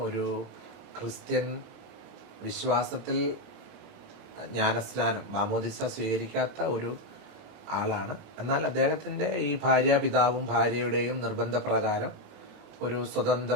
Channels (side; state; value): left; late; 25 ms